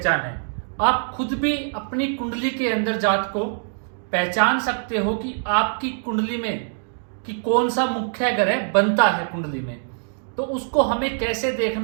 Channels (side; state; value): left; silent; digital silence